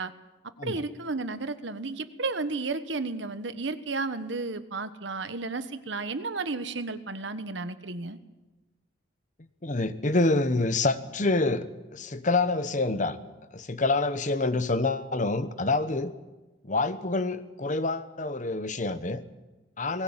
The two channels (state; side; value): normal; both; correlation 0.17